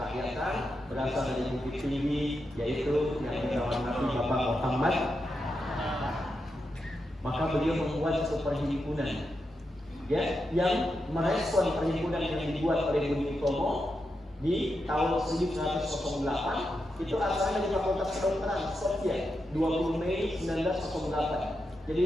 berasal dari Bukit Tinggi, yaitu yang dihormati Bapak Muhammad. Maka beliau membuat satu perhimpunan, ya, yang merespon perhimpunan yang dibuat oleh Budi Utomo di tahun 1908. Itu asalnya dari Fakultas Kedokteran Skopje, 20 Mei 1908.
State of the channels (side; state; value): both; normal; correlation 0.86